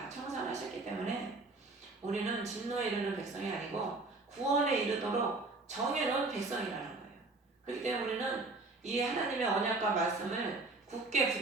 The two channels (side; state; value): left; quieter; 3.3 dB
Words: 청산하셨기 때문에 우리는 진노에 이르는 백성이 아니고 구원에 이르도록 정해놓은 백성이라는 거예요. 그렇기 때문에 우리는 이 하나님의 언약과 말씀을 굳게